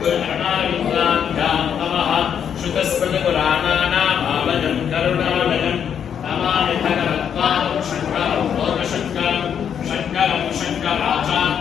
गुरुणायुक्ताभ्यां नमः श्रुतस्मृतपुराणानामालयं करुणालयं नमामि भगवत्पादं शङ्करं लोकशङ्करं शङ्करं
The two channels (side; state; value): right; quieter; 8.3 dB